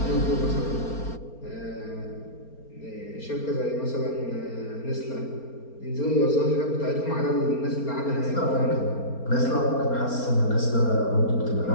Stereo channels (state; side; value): late; right; 4.3 ms